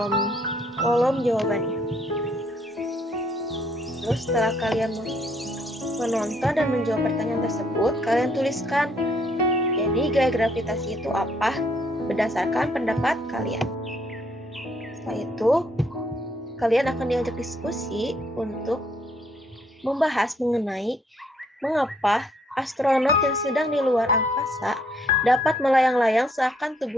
jawabannya. Terus setelah kalian menonton dan menjawab pertanyaan tersebut, kalian tuliskan, jadi gaya gravitasi itu apa berdasarkan pendapat kalian. Setelah itu, kalian akan diajak diskusi untuk membahas mengenai mengapa astronot yang sedang di luar angkasa dapat melayang-layang seakan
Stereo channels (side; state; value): both; normal; correlation 0.68